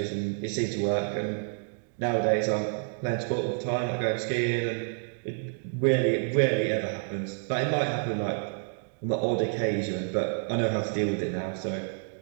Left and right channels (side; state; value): left; silent; 57 dB below the other